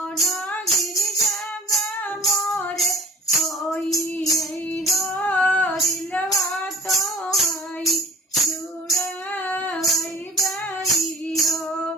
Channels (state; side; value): normal; both; correlation 0.48